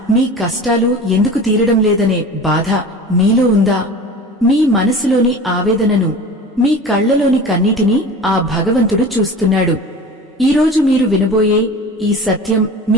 మీ కష్టాలు ఎందుకు తీరడం లేదనే బాధ మీలో ఉందా? మీ మనసులోని ఆవేదనను, మీ కళ్లలోని కన్నీటిని ఆ భగవంతుడు చూస్తున్నాడు. ఈరోజు మీరు వినబోయే ఈ సత్యం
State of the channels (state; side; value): normal; both; correlation 0.37